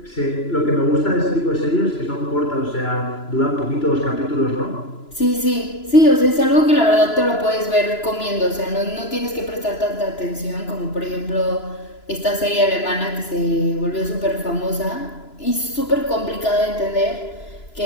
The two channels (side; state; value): right; late; 2.9 ms